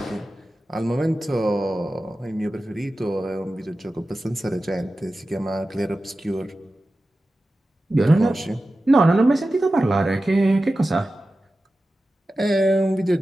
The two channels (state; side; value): normal; both; correlation 0.94